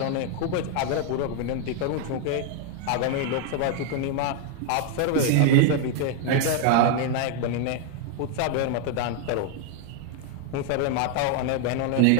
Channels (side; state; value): both; different; correlation 0.00